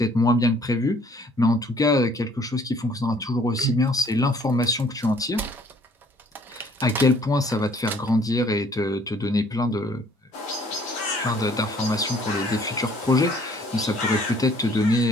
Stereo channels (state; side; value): normal; both; correlation 0.59